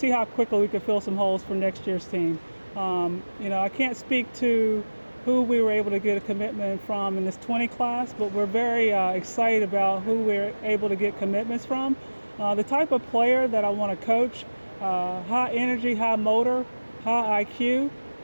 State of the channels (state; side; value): inverted; both; correlation -1.00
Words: how quickly we could fill some holes for next year's team. I can't speak to who we were able to get a commitment from in this 20 class, but we're very excited about who we're able to get commitments from. The type of player that I want to coach, high energy, high motor, high IQ,